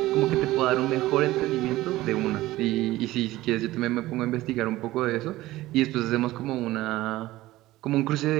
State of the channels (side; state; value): left; quieter; 17.1 dB